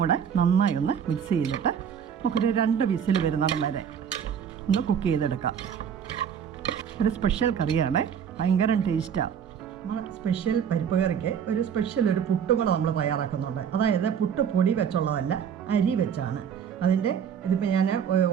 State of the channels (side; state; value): left; quieter; 7.9 dB